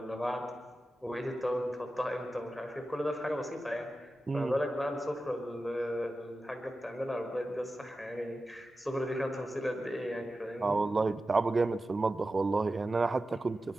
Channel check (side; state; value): both; normal; correlation 0.93